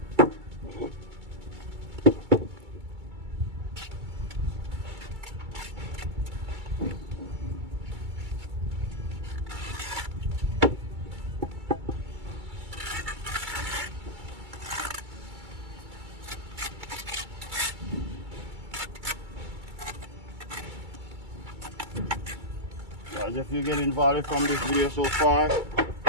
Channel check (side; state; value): left; late; 2.3 ms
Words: Guys, if you get involved from this video so far,